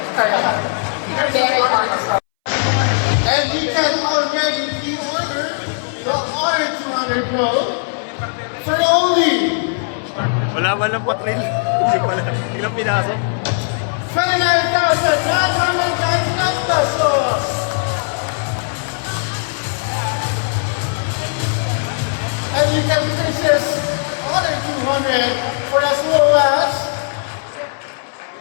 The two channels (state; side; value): silent; right; 64 dB below the other